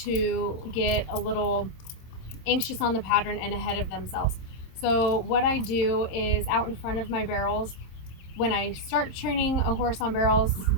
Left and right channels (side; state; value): right; late; 27 ms